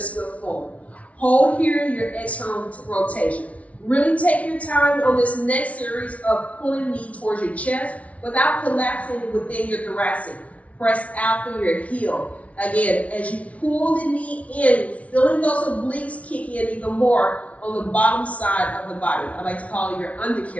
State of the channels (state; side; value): late; right; 0.065 ms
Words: good form? Hold here your external rotation. Really take your time on this next series of pulling knee towards your chest without collapsing within your thoracic. Press out through your heel. Again, as you pull the knee in, feeling those obliques kick in even more on the bottom side of the body. I like to call it your